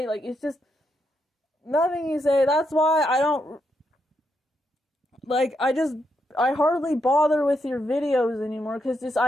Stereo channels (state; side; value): normal; both; correlation 0.81